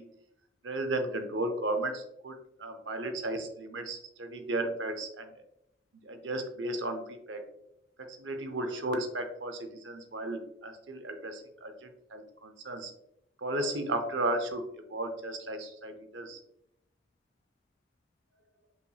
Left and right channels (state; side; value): normal; both; correlation 0.19